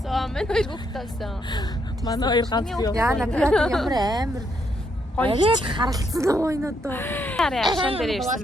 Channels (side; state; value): both; normal; correlation 0.76